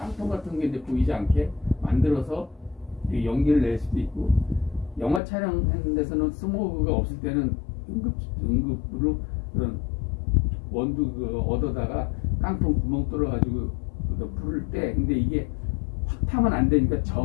같은 게 이제 보이지 않게 만들어서 연기를 낼 수도 있고, 영화 촬영하는 데서는 스모그가 없을 때는 응급으로 그런 원두 얻어다가 깡통 구멍 뚫어가지고 불을 때, 근데 이게 확 타면 안 되니까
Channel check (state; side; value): drops out; right; at 5.2 s